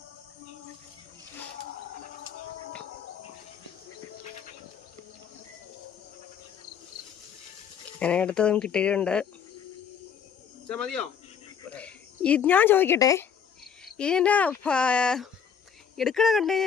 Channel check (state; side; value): quieter; right; 7.5 dB